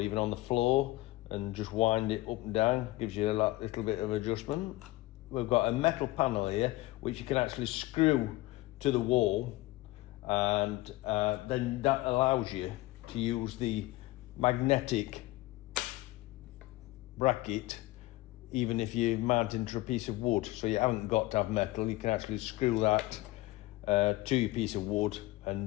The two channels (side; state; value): right; quieter; 19.1 dB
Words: on the floor and just wind it up and down. Gives you a little bit of adjustment. We've got a metal panel here which you can actually screw to the wall, and then that allows you to use the magnetic bracket even if you're mounting to a piece of wood. So you haven't got to have metal, you can actually screw that to your piece of wood